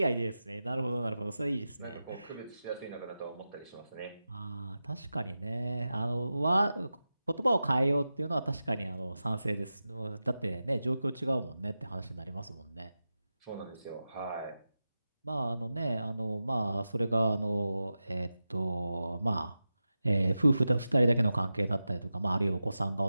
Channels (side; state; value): both; inverted; correlation -0.93